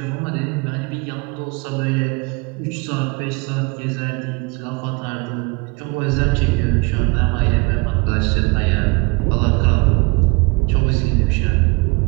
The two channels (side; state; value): left; quieter; 28.7 dB